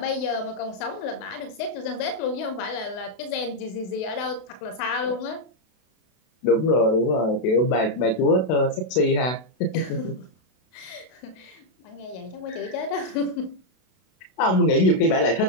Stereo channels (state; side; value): late; right; 32 ms